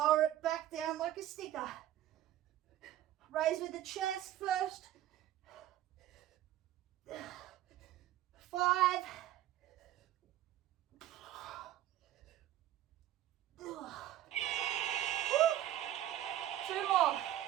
it back down like a sticker. Raise with the chest first. 5.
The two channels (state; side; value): quieter; left; 13.0 dB